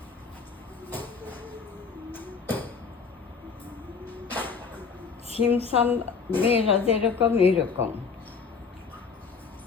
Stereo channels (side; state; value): right; quieter; 5.4 dB